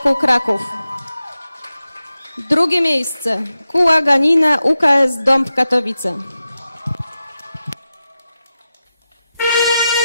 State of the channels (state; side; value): inverted; both; correlation -0.92